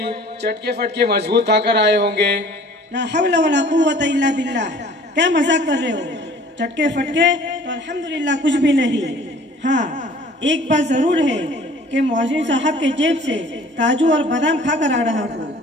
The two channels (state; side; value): normal; both; correlation 0.50